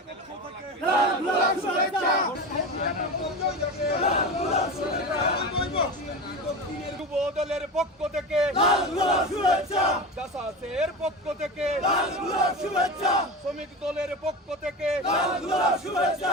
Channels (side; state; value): both; normal; correlation 0.26